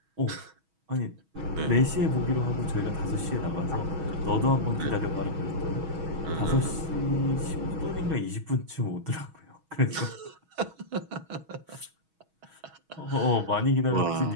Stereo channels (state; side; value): late; left; 6.2 ms